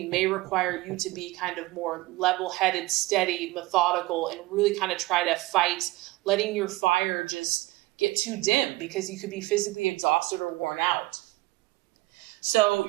may require you to be kind of more level-headed, steady, methodical, and really kind of try to fight letting your fire just get too dim because you could be physically exhausted or worn out. So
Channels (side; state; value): left; quieter; 19.9 dB